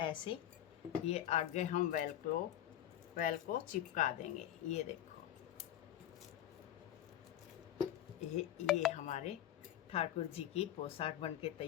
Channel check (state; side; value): quieter; right; 11.9 dB